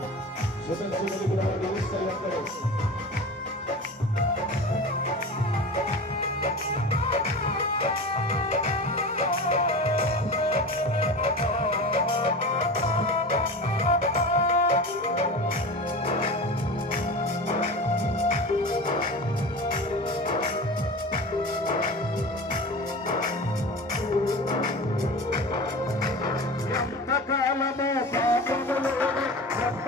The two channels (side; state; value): both; normal; correlation 0.32